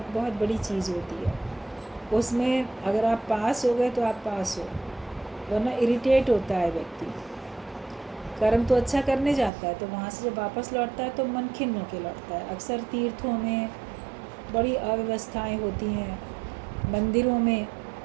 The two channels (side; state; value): left; drops out; at 9.5 s